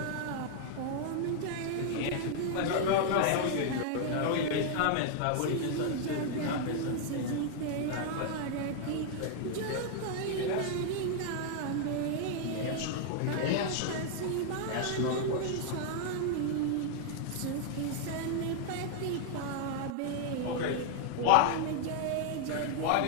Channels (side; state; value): both; different; correlation 0.00